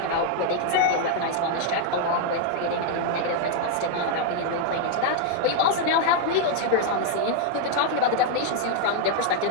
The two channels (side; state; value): both; different; correlation 0.00